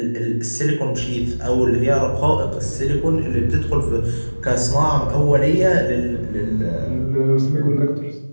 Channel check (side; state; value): both; inverted; correlation -1.00